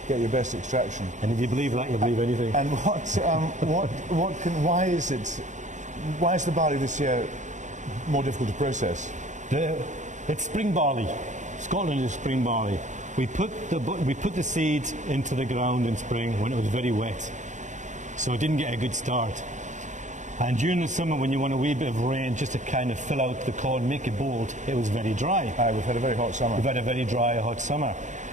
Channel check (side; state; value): left; late; 0.35 ms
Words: Get your best extraction. And if you believe that, you'll believe anything. And why is the barley this year more difficult to process? It's spring barley. Scotland is spring barley. We put the seed into the ground in spring when it was very wet, so it didn't get a good start. And during the summer, when you want a wee bit of rain just to kind of fill out the corn, make it bold, it was very dry. We've had a very hot summer. We've had a very dry, hot summer.